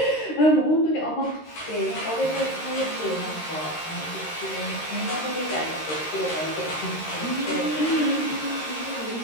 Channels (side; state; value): right; late; 13 ms